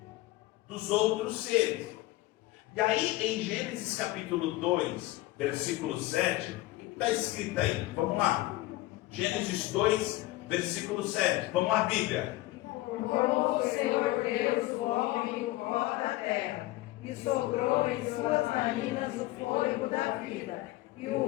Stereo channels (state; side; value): quieter; right; 18.3 dB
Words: dos outros seres. E aí, em Gênesis capítulo 2, versículo 7, o que está escrito aí? Vamos lá. Gênesis 2, versículo 7. Vamos lá, Bíblia. Formou o Senhor Deus o homem do pó da terra, e soprou em suas narinas o fôlego da vida, e